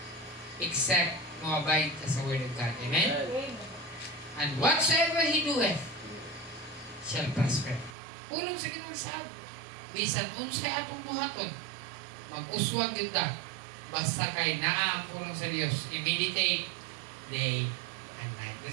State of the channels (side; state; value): left; drops out; at 8.0 s